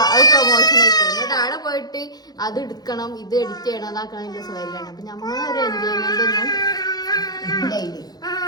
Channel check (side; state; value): right; late; 0.19 ms